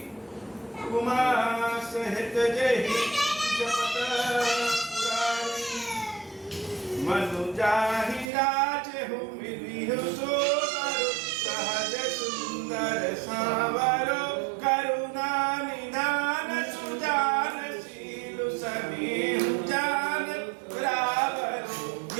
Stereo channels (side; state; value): left; drops out; at 8.3 s